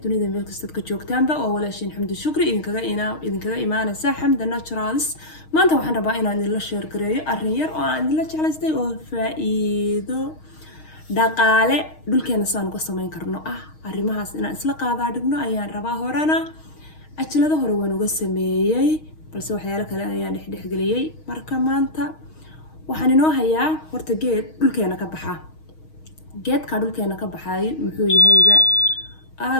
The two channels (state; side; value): late; right; 6.4 ms